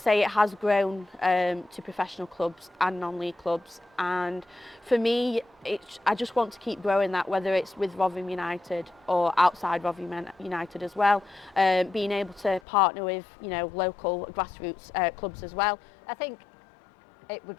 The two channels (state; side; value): drops out; right; at 12.6 s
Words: say, it has grown to professional clubs and non-league clubs, and for me I just want to keep growing that, whether it's with Rotherham United or outside Rotherham United as well, being able to partner with local grassroots clubs as well. I think it would